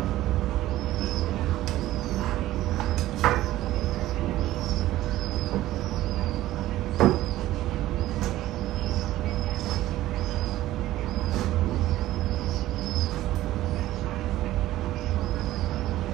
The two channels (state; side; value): quieter; left; 15.2 dB